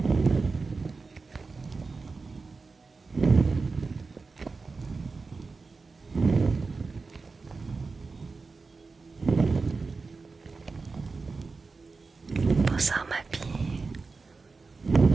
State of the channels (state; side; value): quieter; left; 4.2 dB